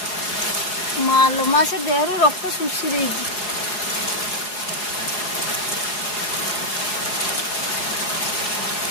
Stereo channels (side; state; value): right; late; 4.8 ms